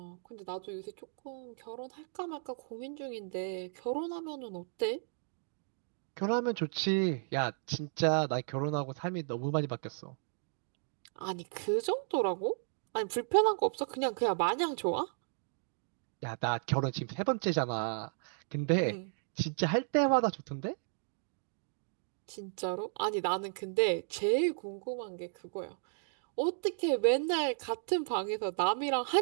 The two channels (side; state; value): left; silent; digital silence